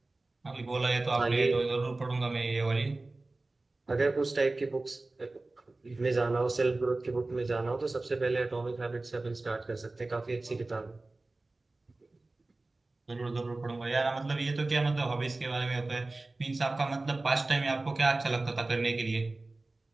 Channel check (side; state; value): left; quieter; 3.1 dB